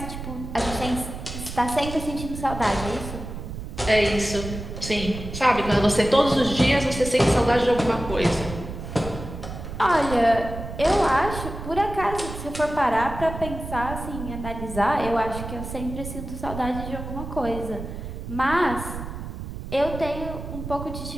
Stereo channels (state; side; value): noise; right; rumble, 8 dB below the sound